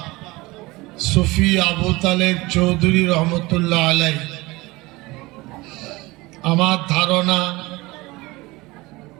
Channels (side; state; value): left; quieter; 21.7 dB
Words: সুফি আবু তালেব চৌধুরী রহমতুল্লাহ আলাইহি, আমার ধারণা